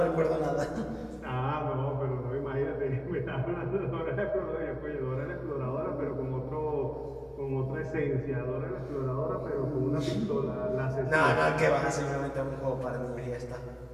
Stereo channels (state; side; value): identical; both; correlation 1.00